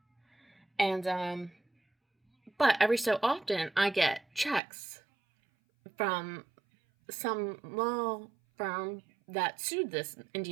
And, but every so often, I get checks from some law firm that sued this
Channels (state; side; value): drops out; left; at 4.6 s